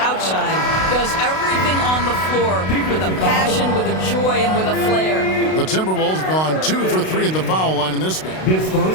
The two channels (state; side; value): late; right; 32 ms